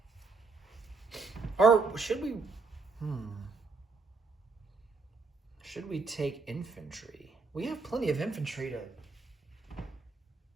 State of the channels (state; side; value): quieter; left; 4.3 dB